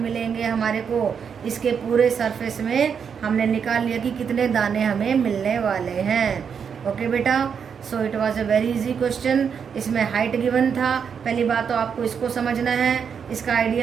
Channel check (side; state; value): left; quieter; 6.9 dB